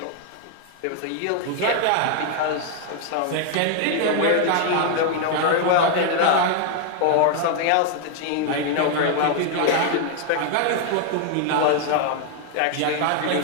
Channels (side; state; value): both; different; correlation 0.00